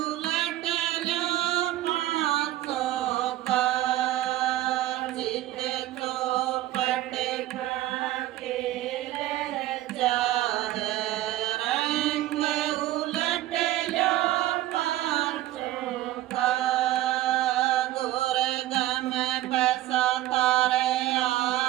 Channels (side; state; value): left; quieter; 15.0 dB